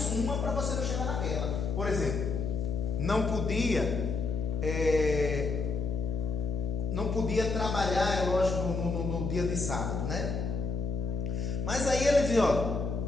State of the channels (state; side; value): noise; left; hum, 2 dB below the sound